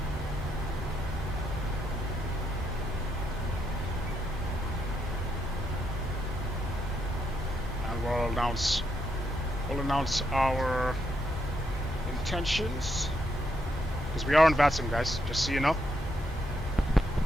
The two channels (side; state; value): both; normal; correlation 0.78